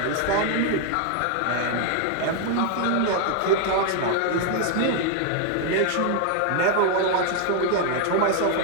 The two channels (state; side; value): different; both; correlation 0.00